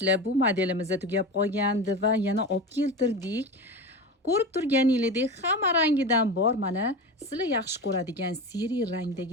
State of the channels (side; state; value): both; normal; correlation 0.26